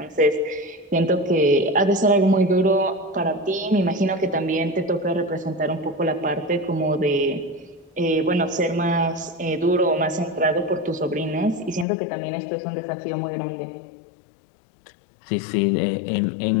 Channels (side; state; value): right; drops out; at 11.9 s